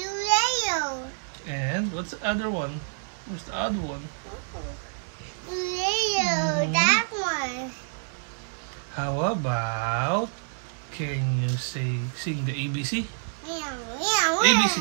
And what's the other one? Where's the other one? Yellow. That one. How about, can you sing the ABC? Meow, meow, ABC,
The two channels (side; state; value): left; silent; 59 dB below the other